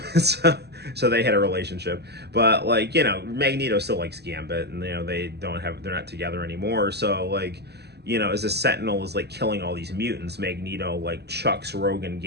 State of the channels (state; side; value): late; left; 0.48 ms